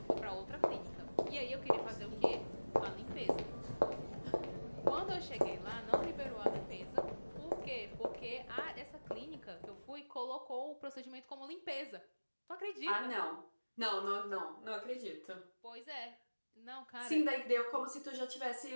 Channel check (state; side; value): inverted; both; correlation -1.00